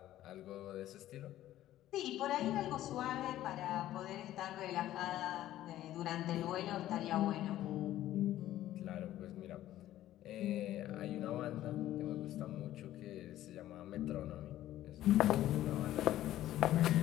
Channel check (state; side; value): quieter; right; 13.7 dB